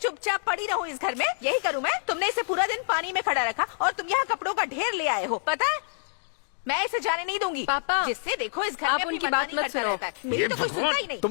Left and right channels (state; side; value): silent; right; digital silence